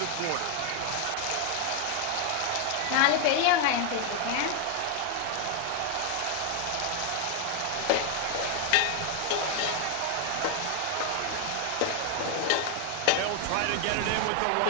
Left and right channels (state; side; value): different; both; correlation 0.01